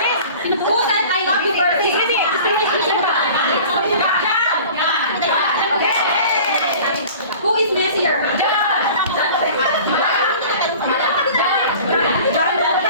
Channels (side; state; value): both; inverted; correlation -0.43